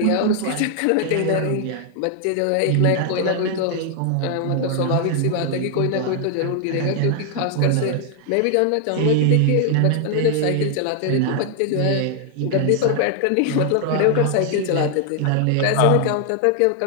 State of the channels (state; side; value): different; both; correlation 0.00